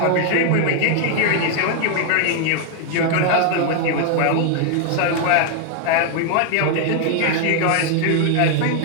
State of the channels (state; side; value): different; both; correlation 0.00